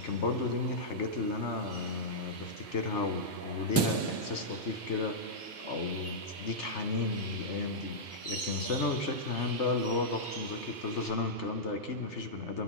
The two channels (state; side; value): normal; both; correlation -0.11